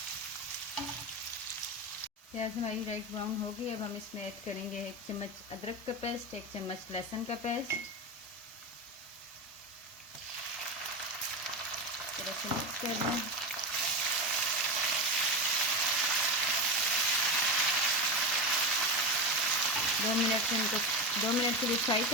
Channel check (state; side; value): normal; both; correlation 0.19